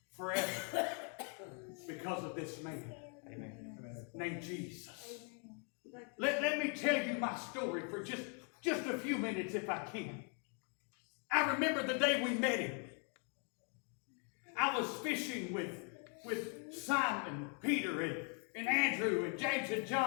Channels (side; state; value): right; quieter; 39.9 dB